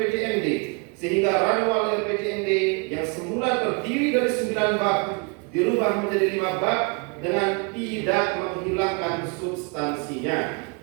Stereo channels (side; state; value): left; quieter; 33.6 dB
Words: sehingga ranwal RPJMD yang semula terdiri dari 9 bab dirubah menjadi 5 bab dengan tidak menghilangkan substansinya.